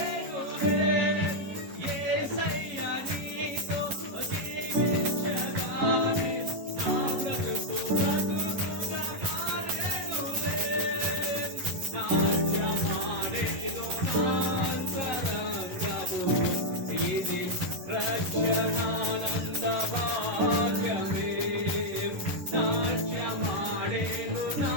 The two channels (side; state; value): left; late; 11 ms